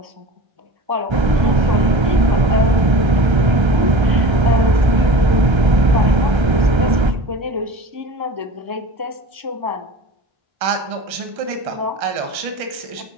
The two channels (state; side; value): late; left; 1.3 ms